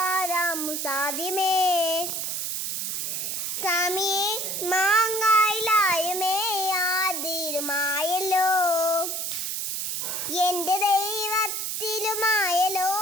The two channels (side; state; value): right; noise; hiss, 2 dB below the sound